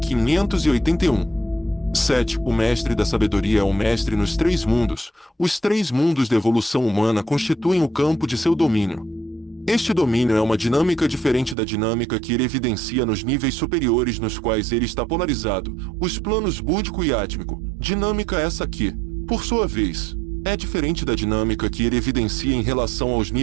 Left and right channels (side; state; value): left; drops out; at 11.6 s